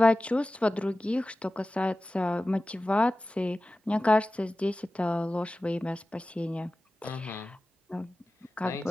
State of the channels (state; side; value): normal; both; correlation 0.95